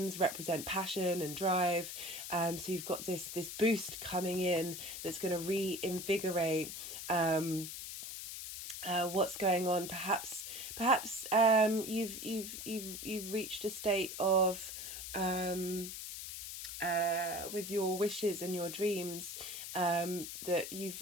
represent passion and drive. So you've got this boost coming in that's going to reinvigorate what's going on. Perhaps you've reached a state of with your wishes and your dreams, that you've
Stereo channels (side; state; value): left; noise; hiss, 8 dB below the sound